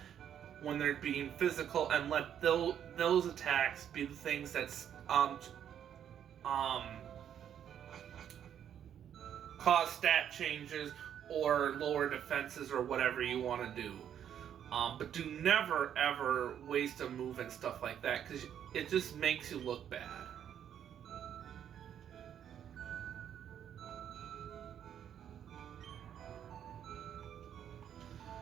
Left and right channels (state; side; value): quieter; left; 9.4 dB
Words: when they're being physical, and let those attacks be the things that cause stat changes or lower defenses or whatever you want to do. But do never ever waste a move and stuff like that, because it just makes you look bad.